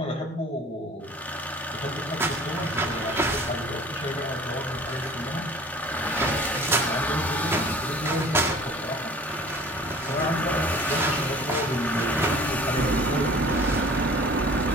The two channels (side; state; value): both; normal; correlation 0.47